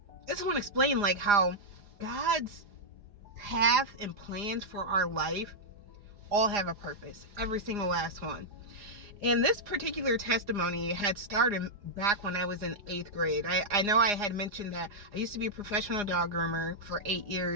just want to explain like how God's path and plans for our life all have a purpose. Every single last one. And this particular testimony had started back when I was in 8th grade. I know I had mentioned that I used to be a professional dog groomer for 8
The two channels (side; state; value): left; late; 4.9 ms